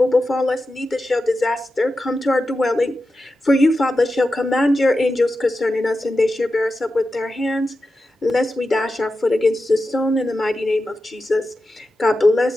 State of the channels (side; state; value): both; normal; correlation 0.91